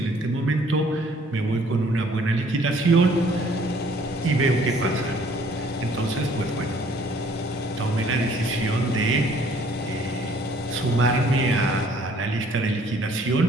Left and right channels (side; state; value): both; normal; correlation 0.59